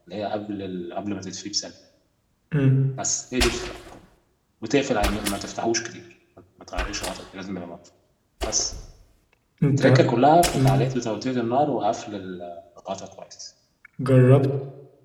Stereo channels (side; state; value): both; identical; correlation 1.00